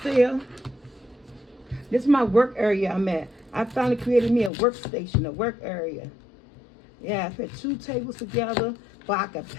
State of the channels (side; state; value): right; drops out; at 4.5 s